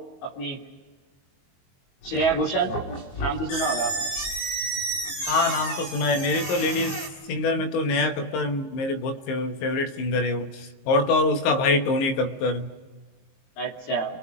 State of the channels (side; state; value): right; late; 22 ms